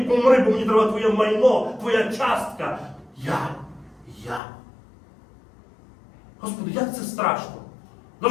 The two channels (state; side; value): drops out; right; at 4.4 s